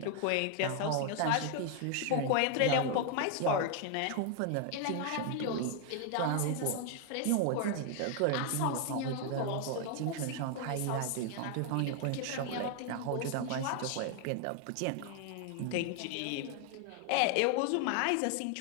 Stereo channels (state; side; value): different; both; correlation 0.00